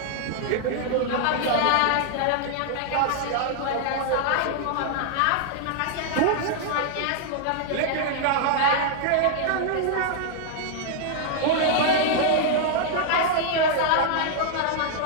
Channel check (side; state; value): both; different; correlation -0.01